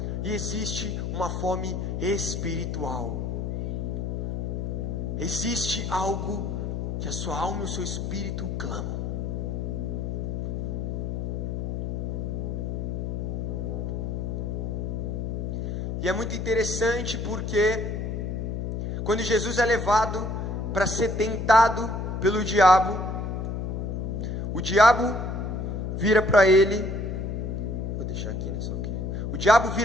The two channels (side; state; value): left; noise; hum, 2 dB below the sound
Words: E existe uma fome espiritual. Existe algo que a sua alma e o seu espírito clamam. E é muito interessante porque quando Jesus é levado para ser tentado pelo diabo, o diabo vira para ele, vou deixar aqui, né, só aqui. O diabo